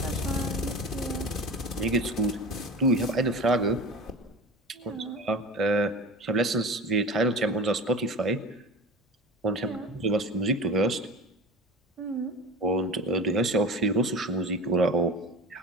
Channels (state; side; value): normal; both; correlation 0.32